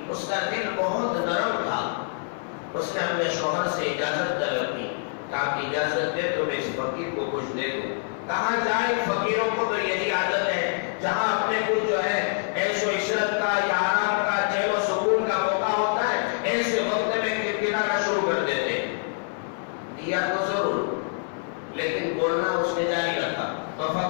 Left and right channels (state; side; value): silent; right; 61 dB below the other